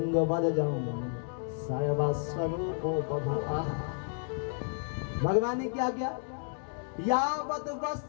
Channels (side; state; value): right; silent; 57 dB below the other